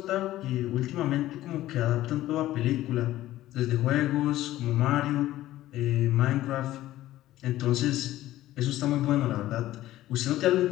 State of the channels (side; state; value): right; quieter; 14.9 dB